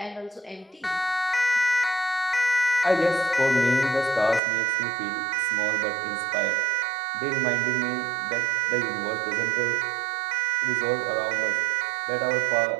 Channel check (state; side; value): drops out; left; at 4.4 s